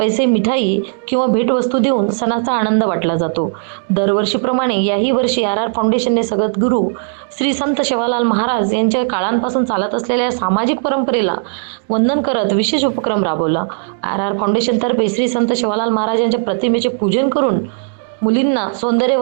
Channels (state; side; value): silent; left; digital silence